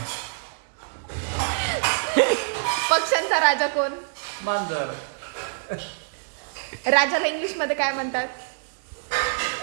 पक्ष्यांचा राजा कोण? मांजर. राजाला इंग्लिश मध्ये काय म्हणतात?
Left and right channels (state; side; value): silent; left; 61 dB below the other